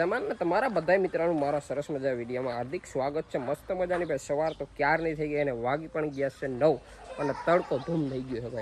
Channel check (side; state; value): both; identical; correlation 1.00